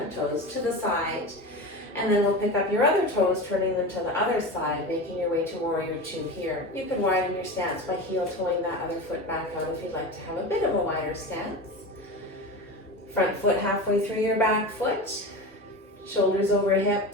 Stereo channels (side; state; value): both; normal; correlation 0.27